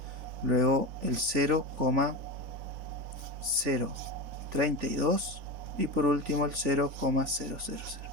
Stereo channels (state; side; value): late; left; 4.0 ms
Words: Luego el 0,032 y por último el 0,000.